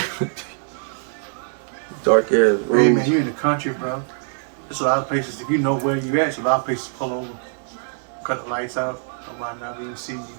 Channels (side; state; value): left; silent; digital silence